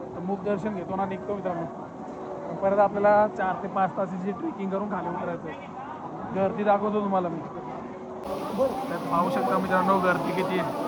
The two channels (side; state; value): both; identical; correlation 1.00